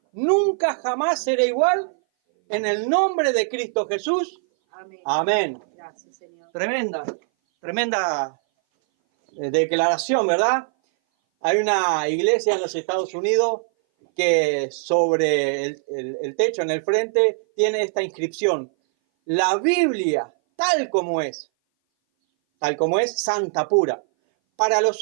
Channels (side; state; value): left; silent; 59 dB below the other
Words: nunca jamás seré igual. En el nombre de Cristo Jesús. Amén. Amén. Gracias, Señor. Tremenda declaración, ¿verdad? Hay una iglesia en los Estados Unidos que sobre el techo, en el frente, tiene esta inscripción: la Biblia, tal como es, santa pura. Para los